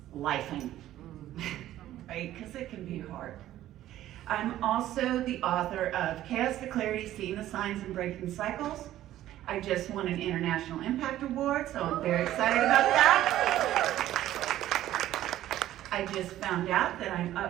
lifing? Right? Because it can be hard. I'm also the author of Chaos to Clarity, Seeing the Signs and Breaking Cycles. I just won an International Impact Award, so I'm very excited about that. I just found out that I'm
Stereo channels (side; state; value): left; quieter; 13.4 dB